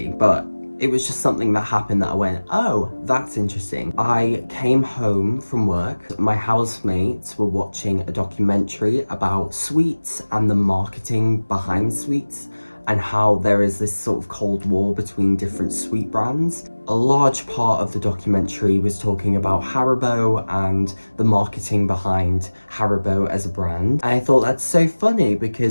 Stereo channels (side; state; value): both; inverted; correlation -1.00